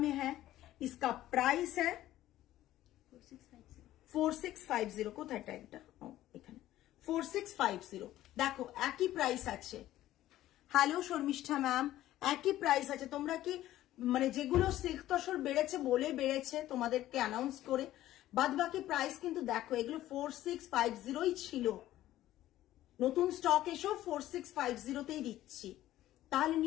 है। इसका प्राइस है 4650 কোথায় ট্যাগটা? ও এখানে 4650 দেখো একই প্রাইস আছে। হ্যালো শর্মিষ্ঠা ম্যাম, একই প্রাইস আছে। তোমরা কি মানে যেগুলো সিল্ক তসর বেড়েছে বলে বেড়েছে তোমাদেরকে অ্যানাউন্স করে, বাদ বাকি প্রাইস কিন্তু দেখো এগুলো 4650ই ছিল। নতুন স্টক এসেও 4650তেই দিচ্ছি, তাহলে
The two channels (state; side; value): quieter; right; 14.2 dB